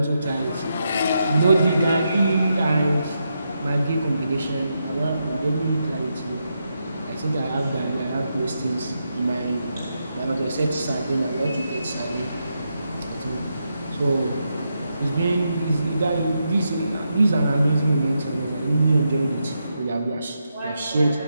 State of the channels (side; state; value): both; inverted; correlation -0.84